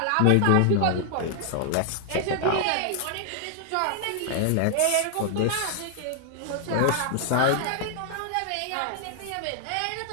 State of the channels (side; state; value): both; different; correlation 0.00